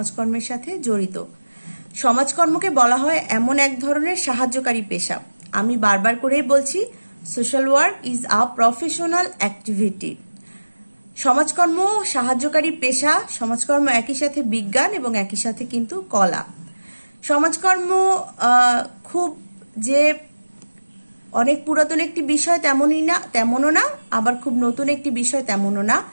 সাথে জড়িত। সমাজকর্মকে বলা হয় এমন এক ধরনের সাহায্যকারী পেশা। আমি বারবার করেই বলছি, social work is a professional activity. সমাজকর্ম সাহায্যকারী পেশা, সমাজকর্ম একই সাথে বিজ্ঞান এবং একই সাথে কিন্তু কলা। সমাজকর্ম খুব যে অনেক পুরাতন একটি বিষয় তেমনও না, আবার খুব নতুন একটি বিষয় তেমনও না।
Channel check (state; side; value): inverted; both; correlation -1.00